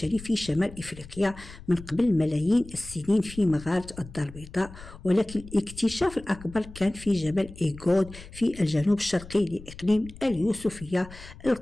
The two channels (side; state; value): left; noise; rumble, 17 dB below the sound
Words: في شمال إفريقيا من قبل ملايين السنين في مغارة الدار البيضاء، ولكن الاكتشاف الأكبر كان في جبل إيغود في الجنوب الشرقي لإقليم اليوسفية.